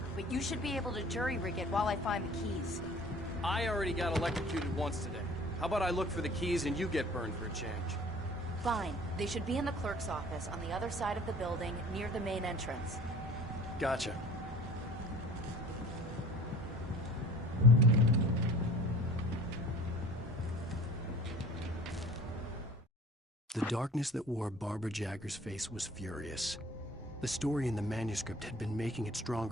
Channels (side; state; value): both; normal; correlation 0.47